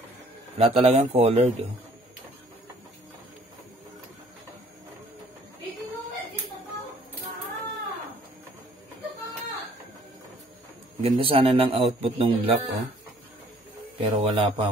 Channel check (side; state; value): both; normal; correlation 0.58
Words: Wala talagang colored, oh. Ganda sana ng output ng black, oh. Pero wala